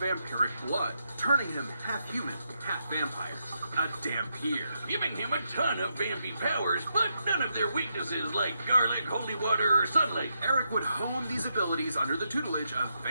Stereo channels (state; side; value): inverted; both; correlation -0.82